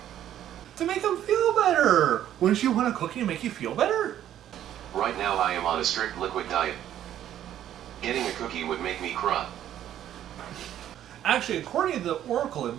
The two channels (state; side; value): quieter; left; 11.3 dB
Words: To make him feel better! Wouldn't you want a cookie to make you feel better? Right now I am on a strict liquid diet. Getting a cookie would make me cry. Actually, according to the Oracle, it